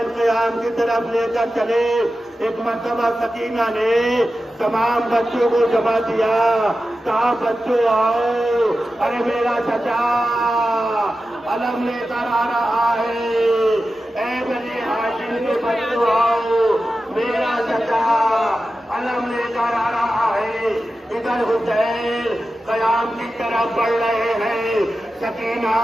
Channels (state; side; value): normal; both; correlation 0.93